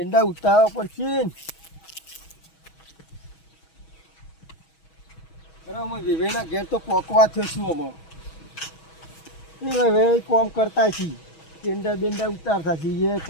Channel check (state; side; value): late; right; 6.2 ms